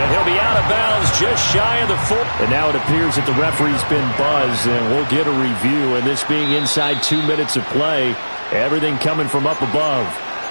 he'll be out of bounds just shy of the 4. And now it appears that the referee's been buzzed, and we'll get a review. And this being inside 2 minutes of play, everything coming from up above.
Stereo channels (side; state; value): both; inverted; correlation -1.00